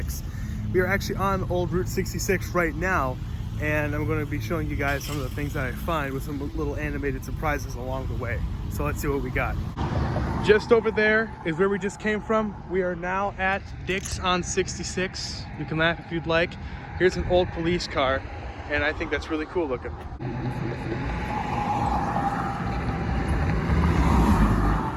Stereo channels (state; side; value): identical; both; correlation 1.00